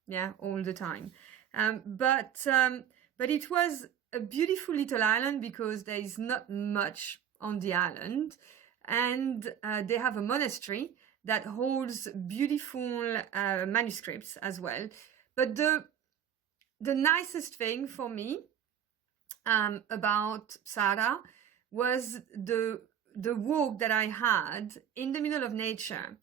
Yeah, all the time. But it was a beautiful little island because there is not much on the island. And they have a monastery that holds beautiful manuscripts as well. But the nicest thing for me about Psara was the walk that I had in the middle of nature.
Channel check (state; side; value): quieter; left; 9.2 dB